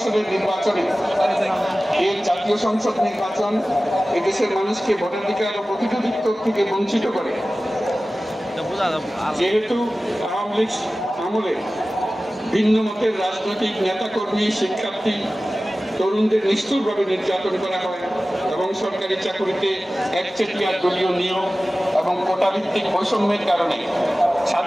নির্বাচনে এই জাতীয় সংসদ নির্বাচন এদেশের মানুষকে ভোটাধিকার ও প্রতিনিধিত্ব থেকে বঞ্চিত করে। যেহেতু আওয়ামী লীগ আমলে ভিন্ন মতের রাজনৈতিক নেতাকর্মী, শিক্ষার্থী, তরুণদের নিষ্ঠুরভাবে নির্যাতন করা হয় এবং সরকারি চাকুরিতে একচেটিয়া দলীয় নিয়োগ এবং কোটাভিত্তিক বৈষম্যের কারণে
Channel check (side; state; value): both; normal; correlation 0.96